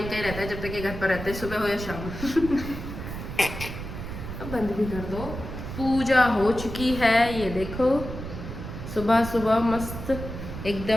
ही रहता है जब तक ये घर पर रहते हैं, सुबह हो या शाम। अब बंद भी कर दो। पूजा हो चुकी है, ये देखो सुबह सुबह मस्त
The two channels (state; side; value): noise; right; rumble, 8 dB below the sound